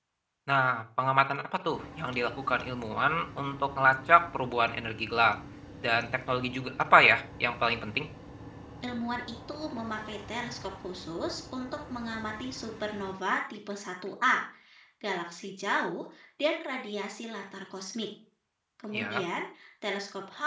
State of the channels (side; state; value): both; identical; correlation 1.00